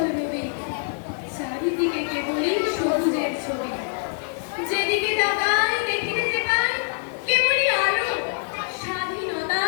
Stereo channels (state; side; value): silent; right; 62 dB below the other